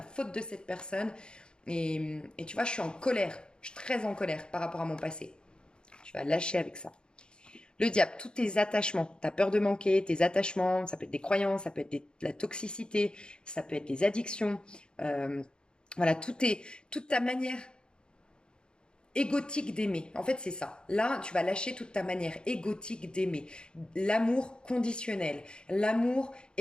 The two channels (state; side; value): late; right; 0.050 ms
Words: faute de cette personne. Et tu vois, je suis en colère. Je suis très en colère par rapport à mon passé. Tu vas lâcher avec ça. Le diable, tous tes attachements, ta peur de manquer, tes attachements, ça peut être des croyances, ça peut être la toxicité, ça peut être des addictions. Voilà, toute ta manière égotique d'aimer. En fait, c'est ça. Là, tu vas lâcher toute ta manière égotique d'aimer. L'amour conditionnel, l'amour